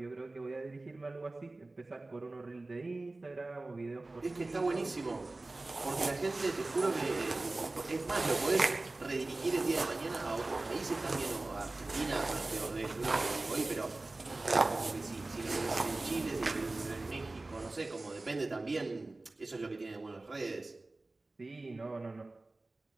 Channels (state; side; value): quieter; left; 3.1 dB